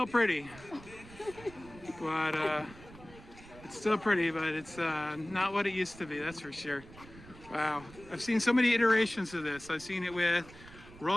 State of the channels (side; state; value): right; noise; rumble, 19 dB below the sound